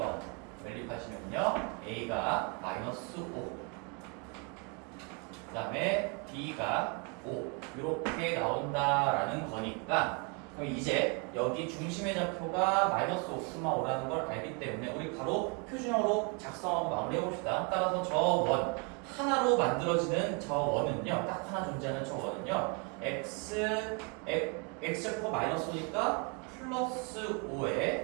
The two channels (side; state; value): left; quieter; 34.4 dB